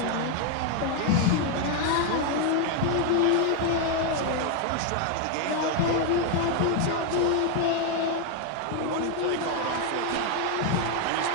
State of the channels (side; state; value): both; different; correlation 0.01